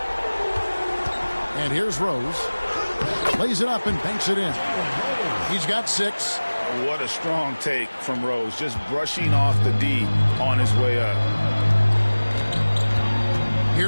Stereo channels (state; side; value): inverted; both; correlation -1.00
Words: And here's Rose. Lays it up and banks it in. He's got 6. What a strong take from Rose. Just brushing off the D on his way up.